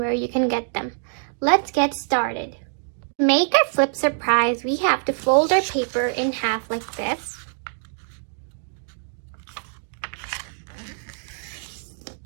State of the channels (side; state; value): left; silent; digital silence